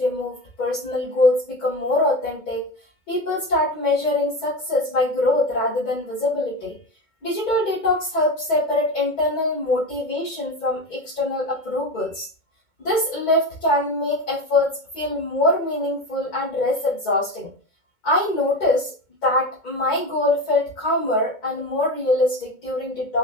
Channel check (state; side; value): late; right; 2.2 ms